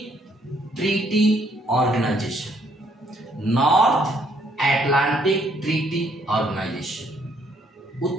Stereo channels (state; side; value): normal; both; correlation 0.68